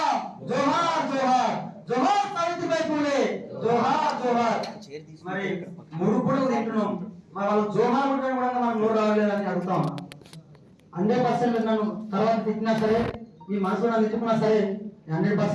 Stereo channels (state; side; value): identical; both; correlation 1.00